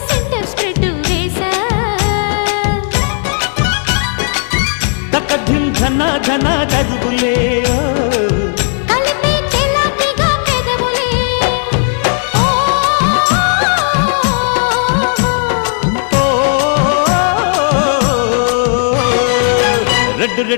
సెంటర్ స్ప్రెడ్ వేసా తకధిం ధన ధన దరువులే కలిపే చెలాకిగా పెదవులే రెడ్డు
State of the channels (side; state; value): right; silent; 61 dB below the other